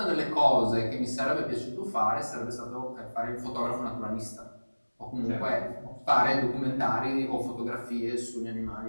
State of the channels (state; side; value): inverted; both; correlation -1.00